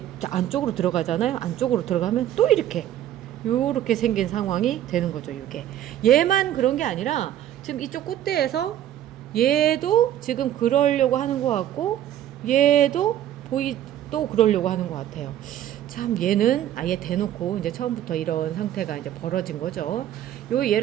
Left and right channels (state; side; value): quieter; left; 11.7 dB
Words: 안쪽으로 들어가잖아요. 안쪽으로 들어가면 또 이렇게 요렇게 생긴 상황이 되는 거죠. 이게 얘만 그런 게 아니라 지금 이쪽 꽃대에서 얘도 지금 그러려고 하는 것 같고 얘도 또 그러려고 하는 것 같아요. 참 얘는 아예 대놓고 이제 처음부터 이런 상태가 이제 벌어진 거죠. 요